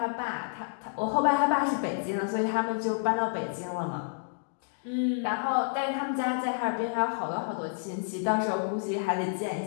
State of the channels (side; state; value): right; silent; digital silence